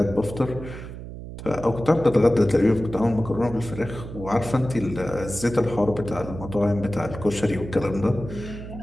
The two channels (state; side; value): noise; right; hum, 11 dB below the sound